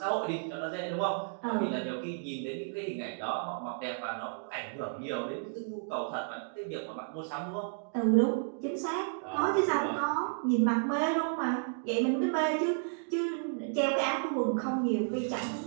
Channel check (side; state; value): left; silent; digital silence